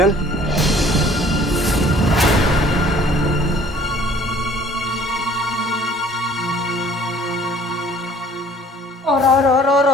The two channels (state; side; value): normal; both; correlation 0.54